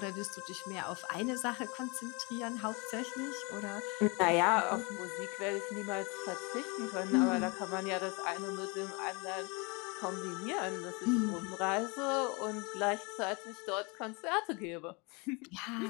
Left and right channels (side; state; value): right; quieter; 29.3 dB